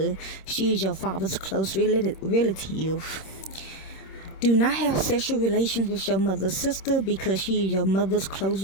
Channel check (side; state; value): right; late; 26 ms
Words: She is your father's close relative. Do not have sexual relations with your mother's sister, because she is your mother's close